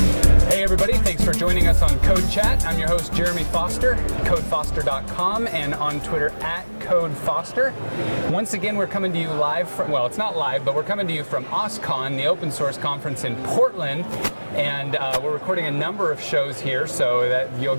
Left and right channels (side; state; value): both; inverted; correlation -1.00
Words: Hey everybody, thanks for joining us on CodeChat. I'm your host Jeremy Foster, codefoster.com, and on Twitter at CodeFoster. Once again, we're coming to you live from, well, it's not live, but we're coming to you from OSCON, the open source conference in Portland. And we're recording a number of shows here, so that you'll